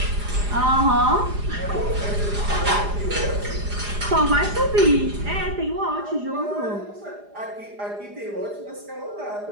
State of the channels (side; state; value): left; late; 4.9 ms